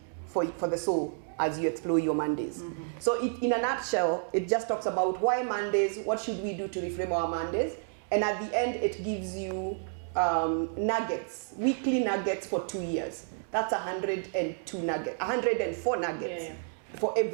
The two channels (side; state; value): left; silent; digital silence